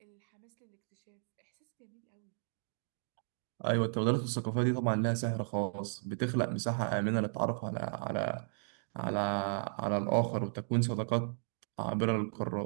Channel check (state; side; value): silent; left; digital silence